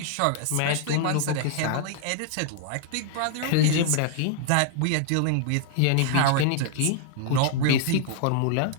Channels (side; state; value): both; different; correlation 0.00